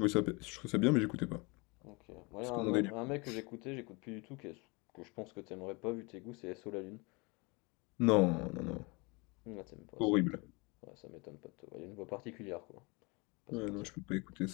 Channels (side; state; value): right; quieter; 28.2 dB